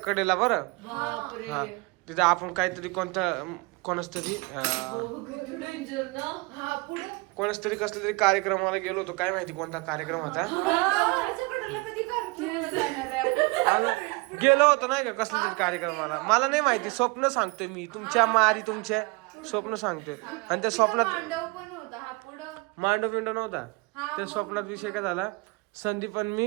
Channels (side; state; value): left; quieter; 27.3 dB